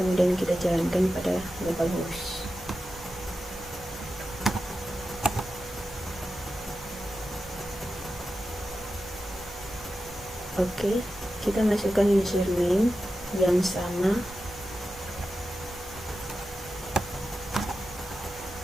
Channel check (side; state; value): both; normal; correlation 0.91